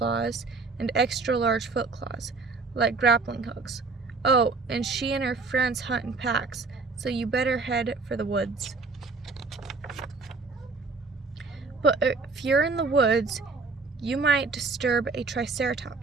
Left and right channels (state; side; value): quieter; left; 4.1 dB